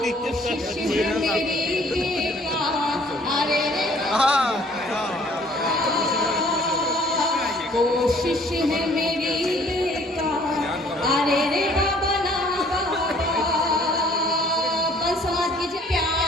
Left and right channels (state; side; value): normal; both; correlation 0.58